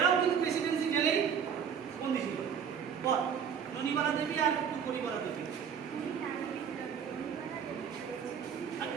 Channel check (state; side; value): quieter; left; 7.5 dB